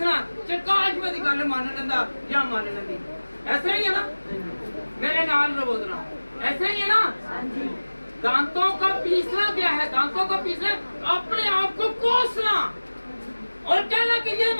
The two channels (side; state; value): both; inverted; correlation -1.00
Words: काश मेरी गल मान लेंदा या मान लेंदी। ऐसा ही है ना, मेरे नाल बोलना, ऐसा ही है ना। दांतों का पीसना क्या है? दांतों का पीसना अपने आप को कोसना और कहना कि ये